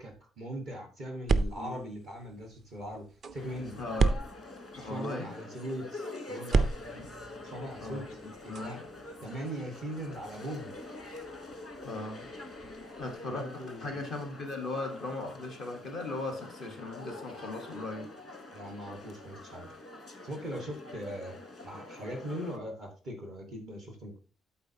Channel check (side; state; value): both; normal; correlation 0.74